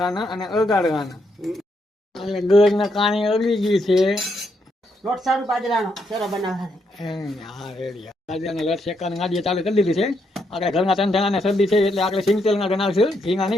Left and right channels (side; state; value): both; normal; correlation 0.78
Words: અને અગાડવાના એટલે ગળ ના કાણી અગળી ગઈ છે લોટ સારું બાજરાનો શેરો બનાવવાનો હા રેડી ગાડીને લટ શેકવાની ગાડીએ ચાલુ કરી દીધી છે આપણે ઘરના ત્રણ જણાને શરદી છે એટલે આપણે સિંગ તેલના ગણાવશું ઘીના